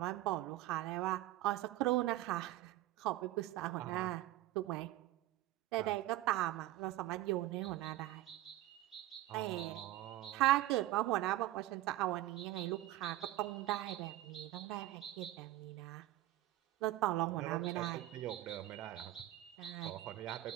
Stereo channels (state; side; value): quieter; left; 15.5 dB